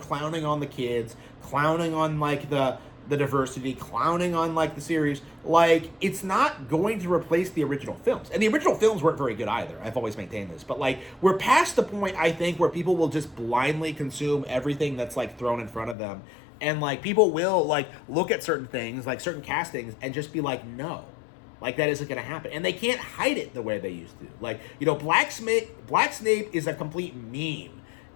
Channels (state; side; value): drops out; right; at 16.0 s